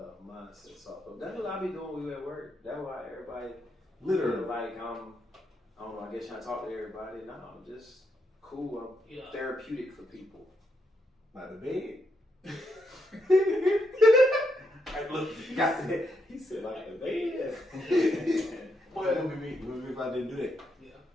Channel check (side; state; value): both; normal; correlation 0.79